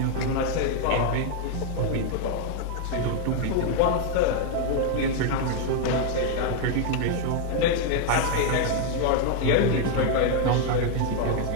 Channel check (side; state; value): both; different; correlation 0.00